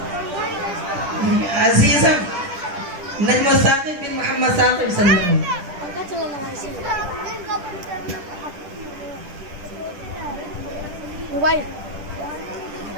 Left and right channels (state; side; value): late; left; 10 ms